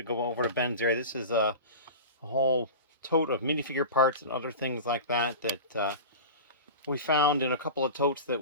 go over to Ben's area. This is a whole tote of minifigure parts and other things like that that we found in a couple of totes that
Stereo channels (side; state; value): both; inverted; correlation -0.31